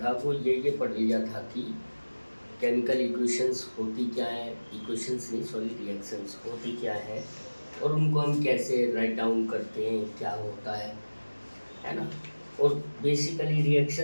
वो ये पढ़ लिया था कि केमिकल इक्वेशंस होती क्या है, इक्वेशंस नहीं सॉरी रिएक्शंस होती क्या है और उनको हम कैसे राइट डाउन करते हैं, क्या होता है ना। और बेसिकली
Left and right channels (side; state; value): both; inverted; correlation -1.00